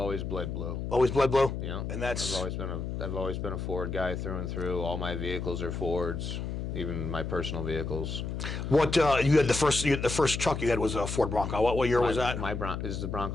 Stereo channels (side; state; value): left; noise; hum, 4 dB below the sound